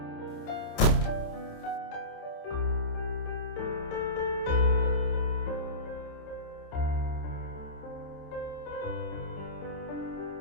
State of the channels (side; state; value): right; late; 27 ms